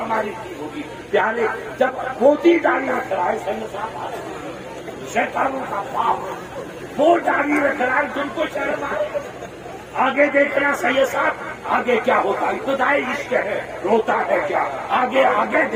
ٹھیک ہوگی پیارے جب موتی داڑھی رکھ رہا ہے شیطانوں کا باپ وہ داڑھی رکھ رہا ہے تم کو شرم آئے آگے دیکھنا سید صاحب آگے کیا ہوتا ہے ابتدائی عشق ہے روتا ہے کیا آگے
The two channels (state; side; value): identical; both; correlation 1.00